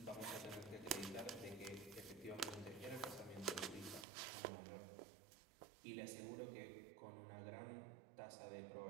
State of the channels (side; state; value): left; drops out; at 4.0 s